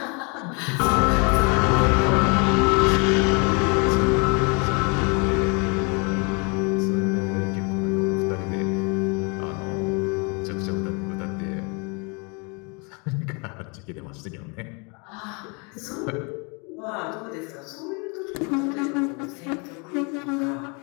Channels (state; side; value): quieter; right; 32.7 dB